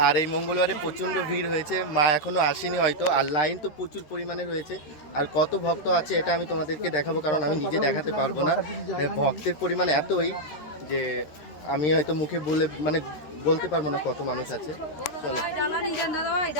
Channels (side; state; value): right; late; 13 ms